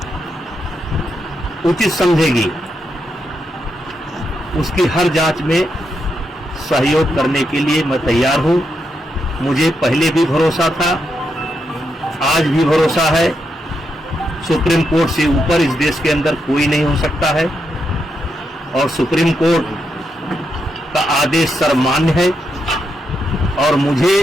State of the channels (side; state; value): both; normal; correlation 0.82